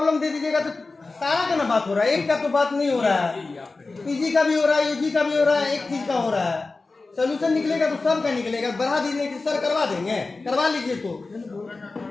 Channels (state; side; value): quieter; right; 3.6 dB